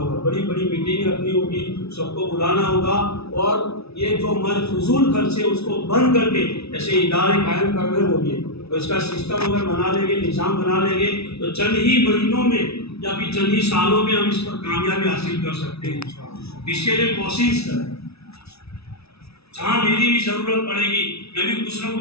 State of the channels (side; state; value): right; late; 0.79 ms